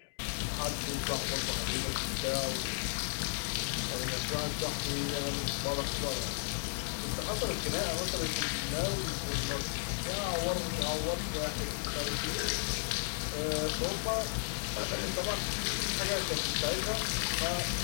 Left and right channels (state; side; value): silent; right; digital silence